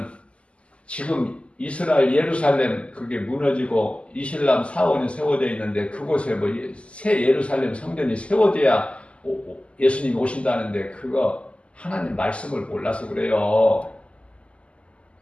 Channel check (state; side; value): late; right; 0.057 ms